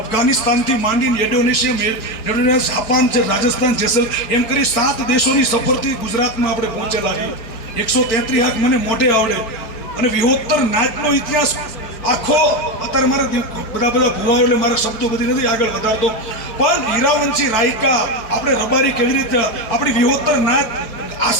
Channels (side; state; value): right; late; 4.5 ms